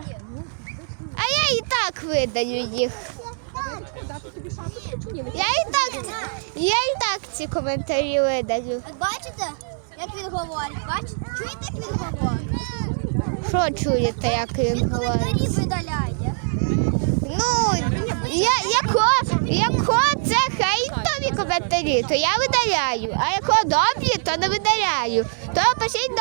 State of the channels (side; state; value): left; silent; 63 dB below the other